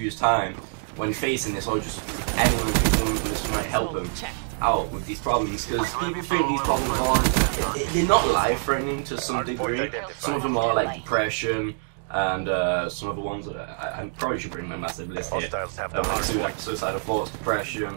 years time when facing this, or just anyone who might help them out with these problems, because people think these problems aren't, they're not life-threatening to some degree. Some of them are like depression, and some of the ones that I probably should bring my massive list here, like suicidal thoughts,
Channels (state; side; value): silent; left; 61 dB below the other